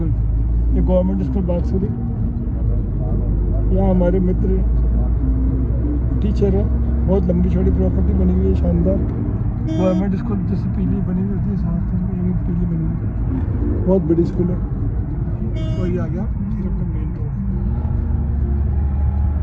ये गवर्नमेंट स्कूल बागसुरी। यहाँ हमारे मित्र टीचर है। बहुत लंबी चौड़ी प्रॉपर्टी बनी हुई है, शानदार। गवर्नमेंट स्कूल जैसे पीली बनी हुई होती है, साथ में ये पीली बनी हुई है। बहुत बड़ी स्कूल है। और ये आ गया फिर अपना मेन रोड।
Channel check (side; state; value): both; identical; correlation 1.00